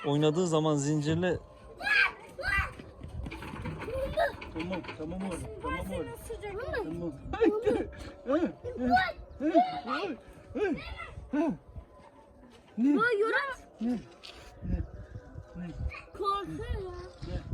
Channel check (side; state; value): both; identical; correlation 1.00